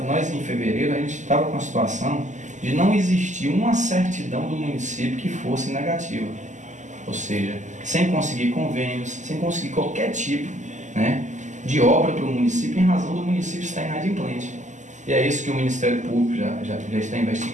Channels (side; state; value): left; late; 0.35 ms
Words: em fevereiro, a gente estava com a situação de não existir uma certidão do município que fosse negativa. Ou seja, sem conseguir convênios, sem conseguir qualquer tipo, né, de obra para o município, em razão do município estar inadimplente. E é isso que o Ministério Público já está